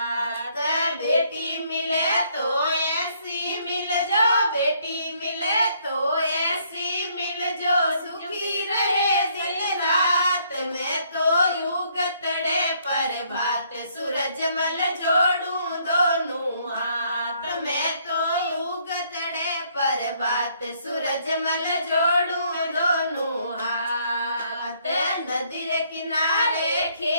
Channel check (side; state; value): both; inverted; correlation -0.67